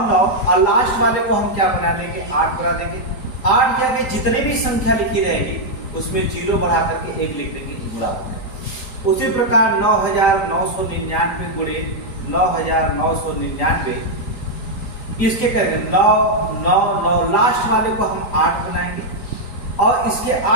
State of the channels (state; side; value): late; right; 3.9 ms